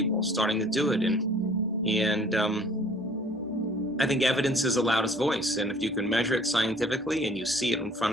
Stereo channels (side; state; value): both; normal; correlation 0.53